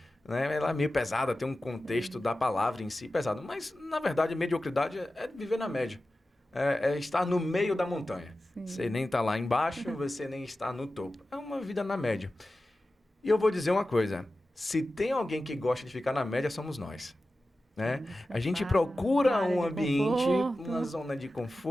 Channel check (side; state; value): both; normal; correlation 0.94